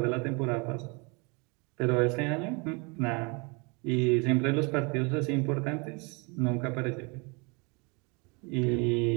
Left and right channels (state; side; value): quieter; left; 30.7 dB